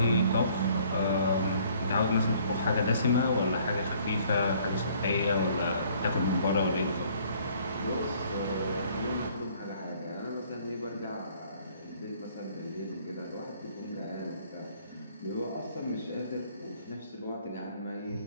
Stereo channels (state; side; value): inverted; both; correlation -0.59